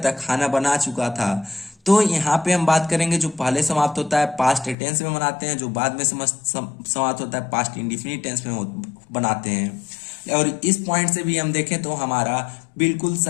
खाना बना चुका था। तो यहाँ पे हम बात करेंगे जो पहले समाप्त होता है पास्ट टेंस में बनाते हैं, जो बाद में समाप्त होता है पास्ट इंडिफिनिट टेंस में बनाते हैं। और इस पॉइंट से भी हम देखें तो हमारा बिल्कुल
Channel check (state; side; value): drops out; right; at 4.8 s